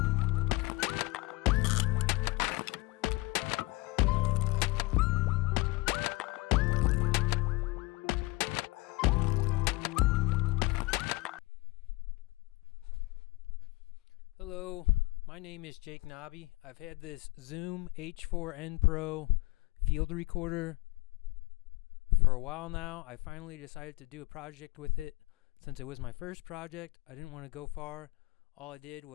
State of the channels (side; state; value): right; quieter; 23.4 dB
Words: Hello, my name is Jake Knobbe. I've had this Zoom H4n Pro field recorder for a while now. I finally decided to do a project with it. Since it was my first project, I didn't want to go far. All I did